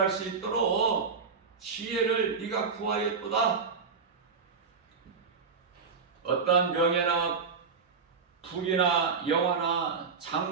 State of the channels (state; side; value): quieter; left; 5.3 dB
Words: 수 있도록 지혜를 네가 구하였도다. 어떠한 명예나 부귀나 영화나